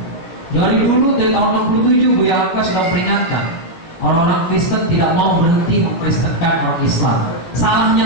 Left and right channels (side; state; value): right; late; 18 ms